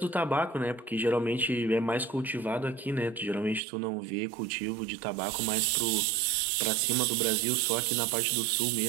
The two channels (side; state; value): left; drops out; at 3.6 s